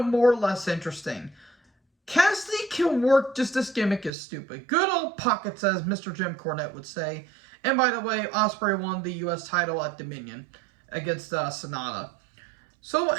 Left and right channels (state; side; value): drops out; left; at 4.1 s